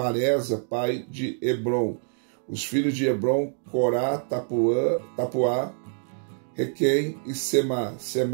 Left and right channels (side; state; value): left; silent; 61 dB below the other